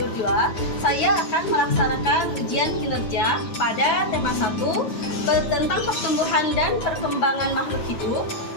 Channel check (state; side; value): late; right; 9.3 ms